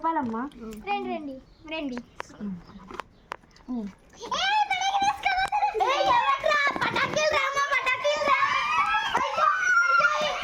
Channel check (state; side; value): identical; both; correlation 1.00